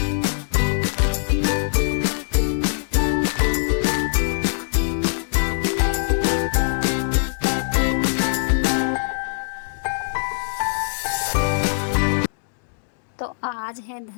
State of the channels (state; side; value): silent; right; digital silence